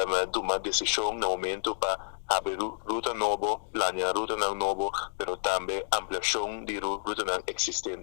tomando decisão no momento para abrir ruta nova, planear ruta nova, mas também ampliação de ruta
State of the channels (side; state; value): right; silent; digital silence